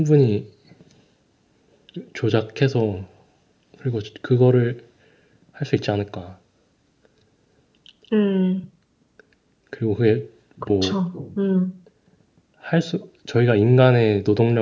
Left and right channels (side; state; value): both; identical; correlation 1.00